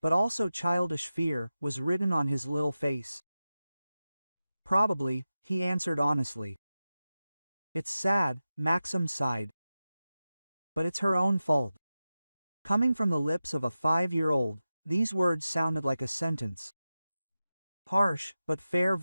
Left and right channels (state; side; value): inverted; both; correlation -0.94